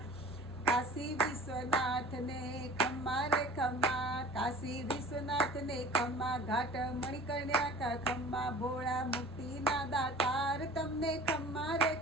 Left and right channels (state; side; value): normal; both; correlation 0.45